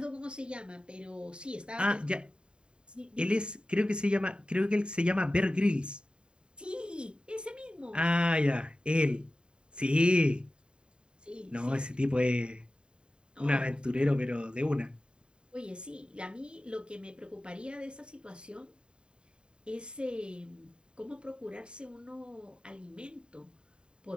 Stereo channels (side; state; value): left; late; 0.051 ms